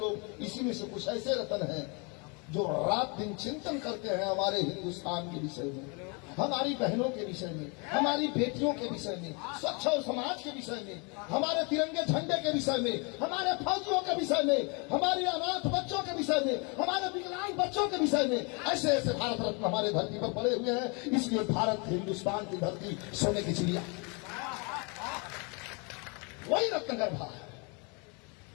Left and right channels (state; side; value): quieter; right; 32.4 dB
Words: इसी में से कुछ ऐसे रतन हैं जो रात दिन चिंतन करते हैं हमारे हिंदुस्तान के विषय में, हमारी बहनों के विषय में, हमारी बेटियों के विषय में, स्वच्छ और समाज के विषय में, हमारे तिरंगे झंडे के विषय में, हमारे फौजियों के विषय में, हमारे अनाथ बच्चों के विषय में, हमारे विकलांग बच्चों के विषय में। ऐसे ऐसे भारत रत्न हमारे धरती पर पड़े हुए हैं। इसलिए भारत हिंदुस्तान की धरती सोने की चिड़िया, वही रत्नगर्भा है।